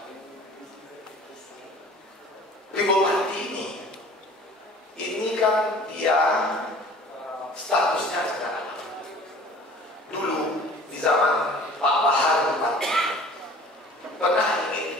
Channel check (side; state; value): both; normal; correlation 0.47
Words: Di Bupati ini kan dia statusnya sekarang. Dulu di zaman Pak Bahar Bupati pernah ingin